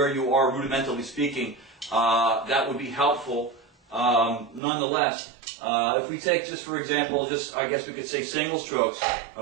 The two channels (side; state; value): left; drops out; at 4.6 s